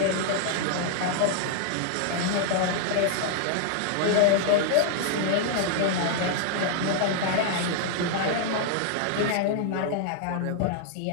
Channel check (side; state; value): both; different; correlation -0.01